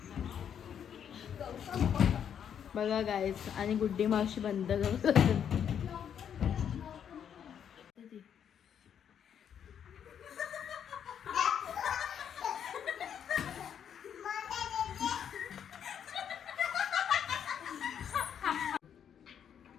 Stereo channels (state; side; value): quieter; right; 8.5 dB